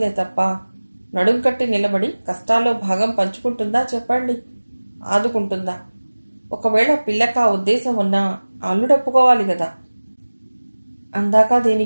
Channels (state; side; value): inverted; both; correlation -1.00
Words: తప్ప నడుం కట్టి నిలబడి కష్టాల్లో భాగం పంచుకుంటుందా చెప్పండి? ఆదుకుంటుందా? ఒకవేళ పిల్లక ఉద్దేశం ఉన్నా అల్లుడప్పుకోవాలి కదా. అందాక